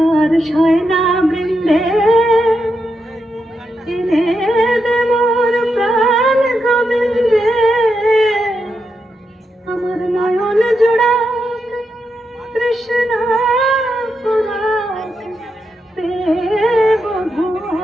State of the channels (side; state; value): both; normal; correlation 0.84